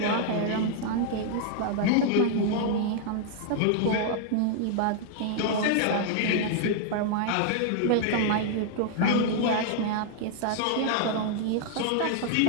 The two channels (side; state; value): both; different; correlation 0.00